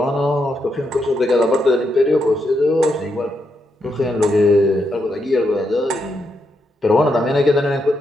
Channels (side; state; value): both; normal; correlation 0.81